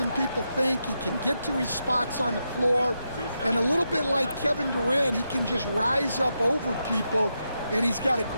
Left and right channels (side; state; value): both; inverted; correlation -0.85